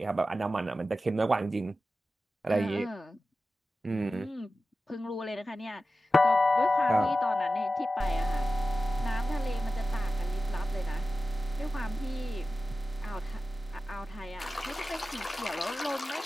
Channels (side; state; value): both; normal; correlation 0.94